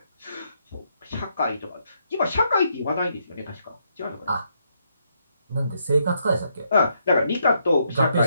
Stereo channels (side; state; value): both; inverted; correlation -0.76